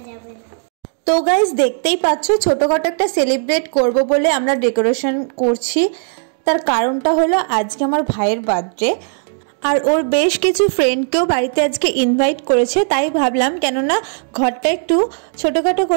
যাবে না। তো গাইস দেখতেই পাচ্ছ ছোটখাটো একটা সেলিব্রেট করব বলে আমরা ডেকোরেশন করছি। তার কারণটা হলো আজকে আমার ভাইয়ের বার্থডে, আর ওর বেশ কিছু ফ্রেন্ডকেও বাড়িতে আজকে ইনভাইট করেছে। তাই ভাবলাম কেননা ঘরটা একটু ছোটোখাটো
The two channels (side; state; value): left; silent; 68 dB below the other